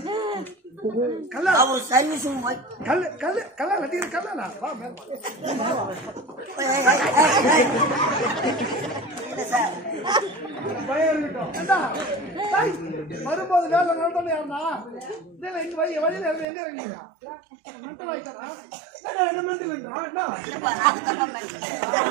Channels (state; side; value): drops out; left; at 16.4 s